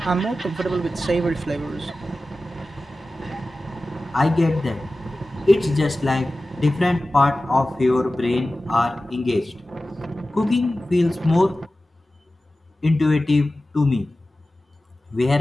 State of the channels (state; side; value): normal; both; correlation 0.95